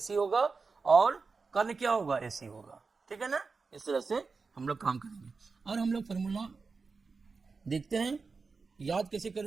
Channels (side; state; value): left; quieter; 4.5 dB